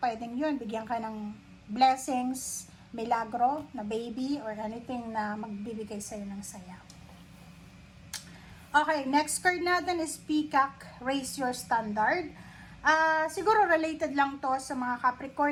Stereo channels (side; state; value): both; identical; correlation 1.00